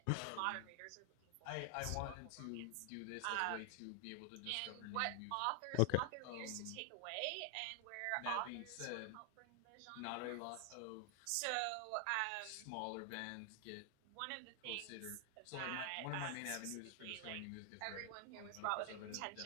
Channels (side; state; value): both; different; correlation 0.00